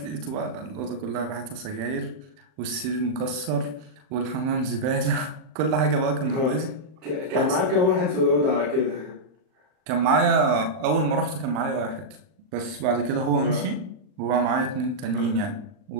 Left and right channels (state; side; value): late; left; 39 ms